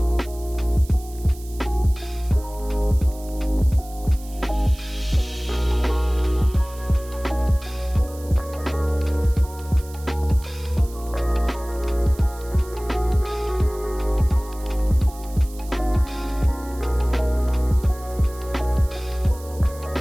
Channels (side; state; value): right; noise; hiss, 20 dB below the sound